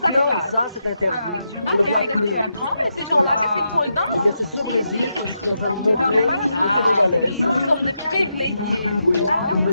ça c'est interdit, on ne voit plus. Voilà. Eh bien c'est ce Brésil que je suis en train de montrer aux Sénégalaises. Nous sommes des privilégiés. Oui, le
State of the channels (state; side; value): inverted; both; correlation -0.85